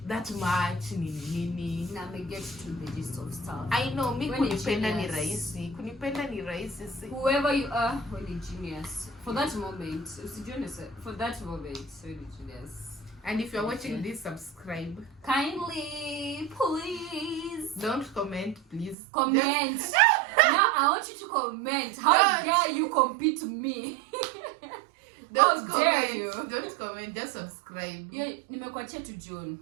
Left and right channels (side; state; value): left; drops out; at 18.9 s